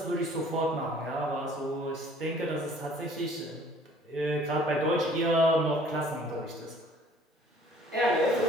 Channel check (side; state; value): both; normal; correlation 0.54